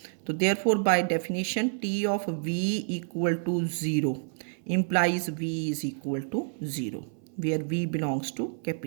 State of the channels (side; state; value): left; silent; 59 dB below the other